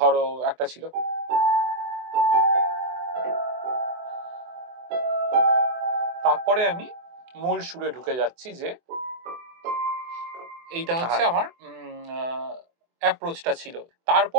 একটা ছিল, তারপরে আমি মূল সুরে ঢুকে যাচ্ছি, যে এইটা হচ্ছে আমার অ্যাপ্রোচটা ছিল।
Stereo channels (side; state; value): left; late; 24 ms